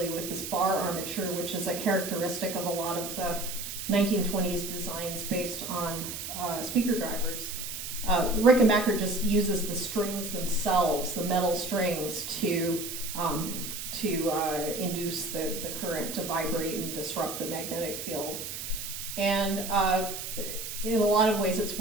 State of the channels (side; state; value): right; noise; hiss, 7 dB below the sound